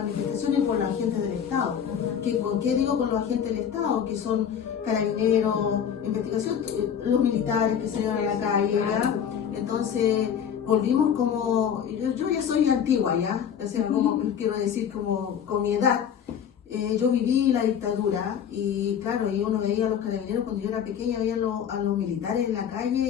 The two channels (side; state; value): right; quieter; 8.3 dB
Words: y por la gente del Estado. ¿Qué digo con los agentes del Estado? Que son carabineros, investigación, los militares que salieron a la calle, ¿ya? Entonces, volvimos como, yo ya soy antigua, ¿ya? O sea, como, quiero decir, como con mi edad. Yo viví la dictadura y claro, y uno veía a los carabineros cuando yo era pequeña, veía a los militares en la calle